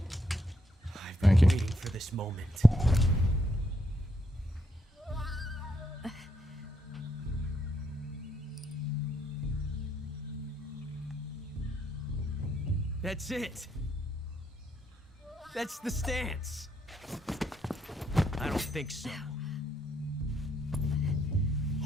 Thank you. Waiting for this moment. That's it. That's the stance. I don't think so.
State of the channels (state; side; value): normal; both; correlation 0.76